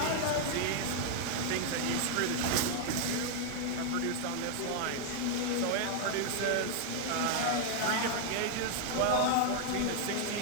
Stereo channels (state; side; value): different; both; correlation 0.00